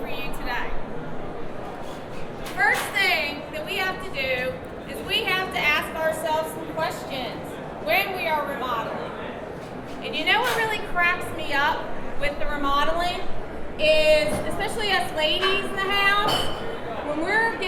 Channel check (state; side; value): identical; both; correlation 1.00